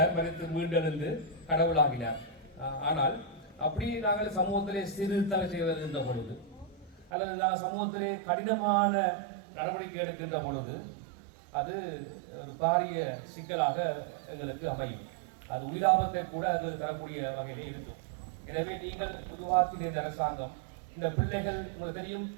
மீண்டெழுந்து கடவுளாகினார். ஆனால் அப்படி நாங்கள் சமூகத்திலே சீர்திருத்தங்கள் செய்வதென்ற பொழுது அல்லது நாங்கள் சமூகத்திலே கடினமான நடவடிக்கை எடுக்கின்ற பொழுது அது ஒரு பாரிய சிக்கலாக எங்களுக்கு அமையும். அது உயிராபத்தை கூட எங்களுக்கு தரக்கூடிய வகையிலே இருக்கும். எனவே நீங்கள் உருவாக்கின இந்த அரசாங்கம், இந்த பிள்ளைகள் உங்களுக்கு தெரியும்,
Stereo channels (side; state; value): left; drops out; at 7.1 s